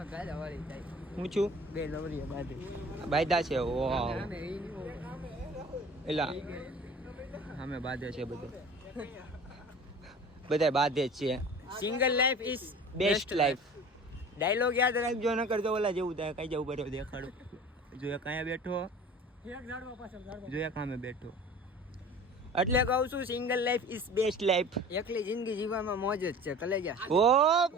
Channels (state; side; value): normal; both; correlation 0.42